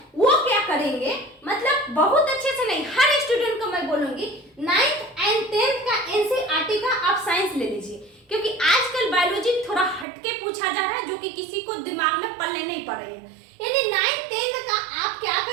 वो क्या करेंगे, मतलब बहुत अच्छे से नहीं, हर स्टूडेंट को मैं बोलूंगी 9th एंड 10th का NCERT का आप साइंस ले लीजिए, क्योंकि आजकल बायोलॉजी थोड़ा हटके पूछा जा रहा है जो कि किसी को दिमाग में पल्ले नहीं पड़ रही है। यानी 9th 10th का आप क्या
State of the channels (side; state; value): left; drops out; at 10.1 s